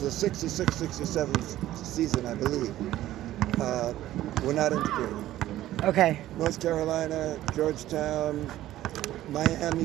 66-67 season, I believe, were not integrated. Okay. North Carolina, Georgetown,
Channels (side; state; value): left; quieter; 14.1 dB